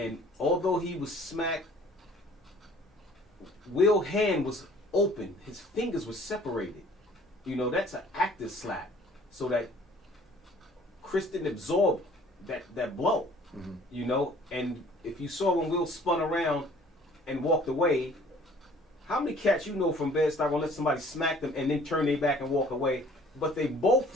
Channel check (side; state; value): both; normal; correlation 0.53